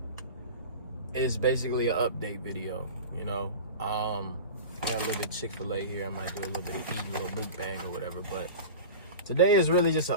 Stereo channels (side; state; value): both; inverted; correlation -0.32